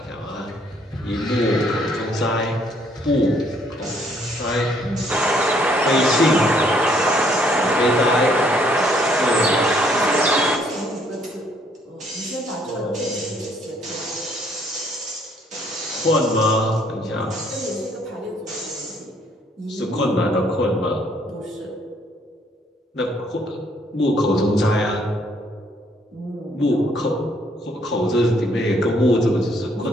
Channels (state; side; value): normal; both; correlation 0.66